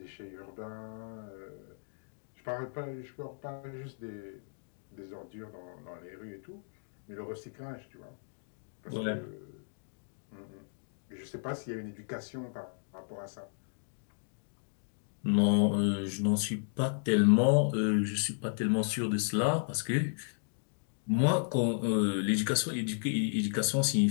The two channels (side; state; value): right; silent; digital silence